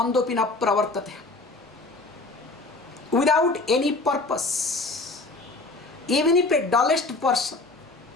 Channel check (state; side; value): quieter; right; 3.3 dB